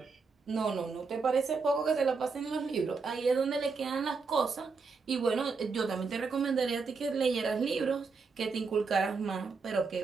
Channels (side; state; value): left; quieter; 4.6 dB